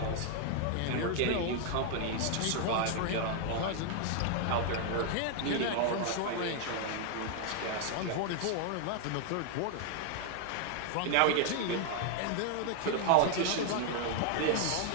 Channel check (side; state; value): both; different; correlation 0.00